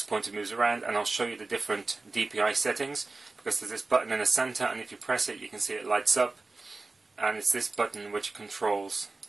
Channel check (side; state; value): left; quieter; 3.5 dB